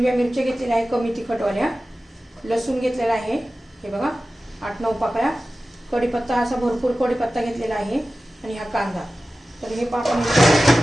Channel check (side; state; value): both; normal; correlation 0.95